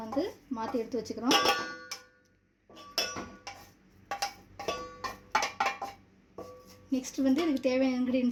மாற்றி எடுத்து வச்சுக்கிறோம். நெக்ஸ்ட் வந்து இதுக்கு தேவையான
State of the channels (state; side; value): identical; both; correlation 1.00